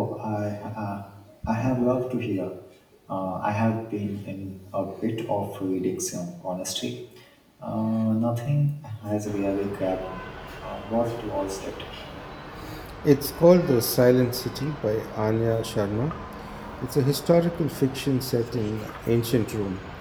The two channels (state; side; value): identical; both; correlation 1.00